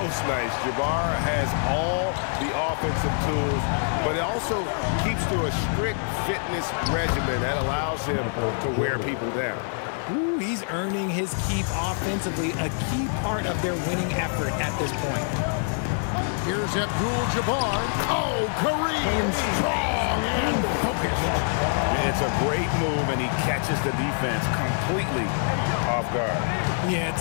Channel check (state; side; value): silent; right; digital silence